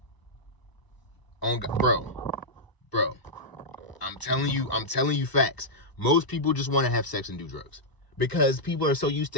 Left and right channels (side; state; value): right; late; 1.0 ms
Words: On God, bro, I'm telling you facts. Most people just want to have sex and do drugs because people are so used